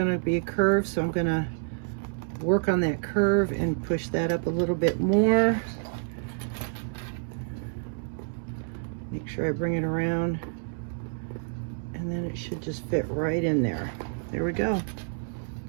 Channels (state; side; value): silent; left; digital silence